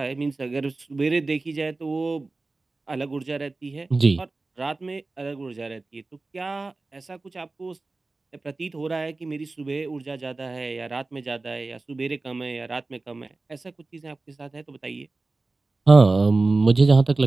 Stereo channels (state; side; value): quieter; left; 3.4 dB